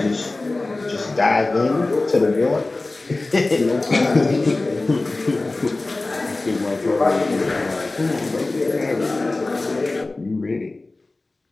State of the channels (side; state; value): right; quieter; 3.1 dB